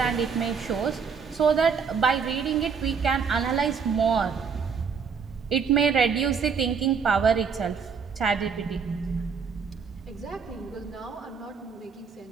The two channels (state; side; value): quieter; left; 6.0 dB